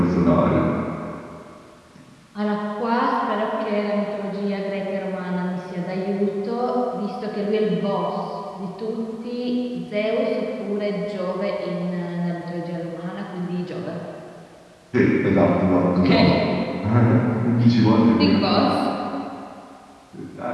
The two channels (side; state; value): both; identical; correlation 1.00